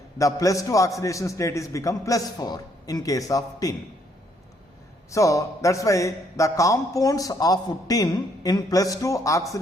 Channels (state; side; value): normal; both; correlation 0.69